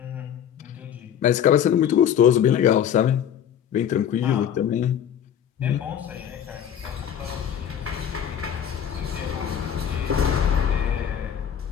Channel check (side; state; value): right; quieter; 9.2 dB